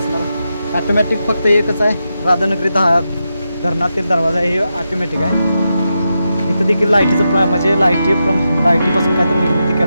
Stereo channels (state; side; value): inverted; both; correlation -0.87